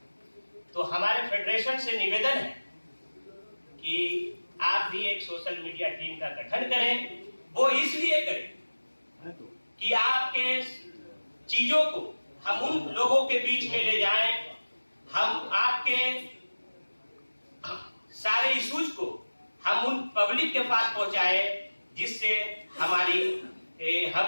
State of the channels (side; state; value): both; inverted; correlation -1.00